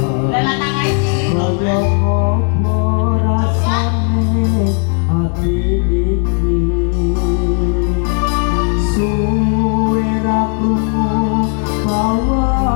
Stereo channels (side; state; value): right; quieter; 39.4 dB